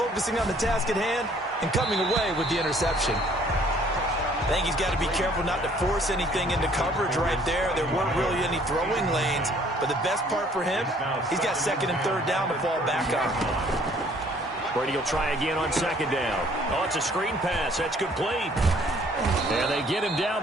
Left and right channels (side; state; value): both; normal; correlation 0.59